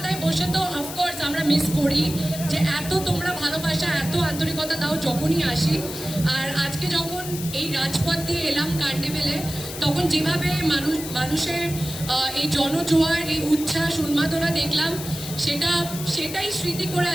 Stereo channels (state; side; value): noise; left; hiss, 9 dB below the sound